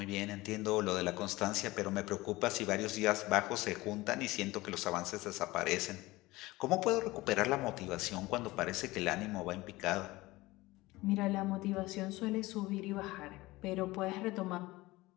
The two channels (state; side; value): quieter; right; 19.9 dB